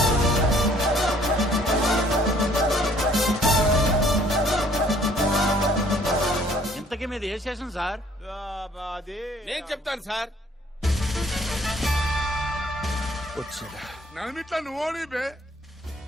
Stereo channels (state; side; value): normal; both; correlation 0.60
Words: ఇంతకీ మీద ఏ స్టేషన్ సార్? నేను చెప్తాను సార్. నన్నిట్లా నువ్వు ఓడిపే.